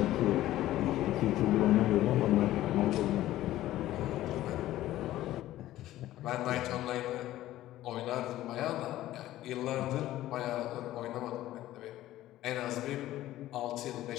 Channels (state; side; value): quieter; right; 14.7 dB